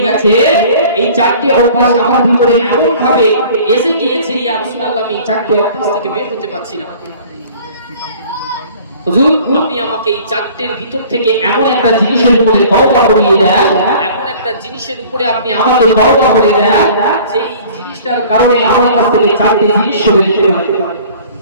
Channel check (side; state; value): both; inverted; correlation -0.49